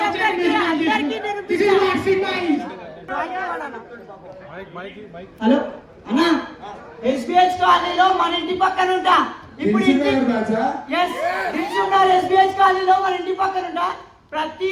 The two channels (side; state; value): both; identical; correlation 1.00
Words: ఒక్కరికి అందరికీ నేను హలో అన్న ఎస్బిహెచ్ కాలనీలో మన ఇంటి పక్కన ఉంటా. ఇప్పుడు ఎస్బిహెచ్ కాలనీలో మన ఇంటి పక్కన ఉంటా. ప్రతి